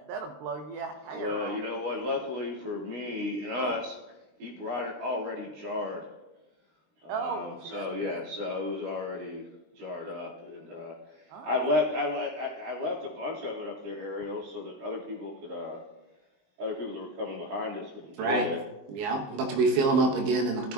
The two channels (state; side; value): late; left; 19 ms